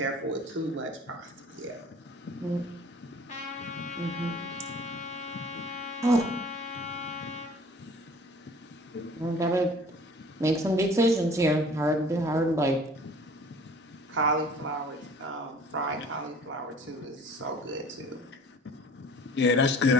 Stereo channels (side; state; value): both; normal; correlation 0.49